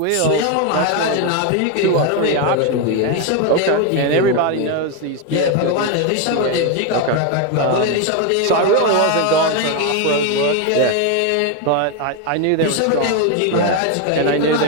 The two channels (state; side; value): different; both; correlation 0.02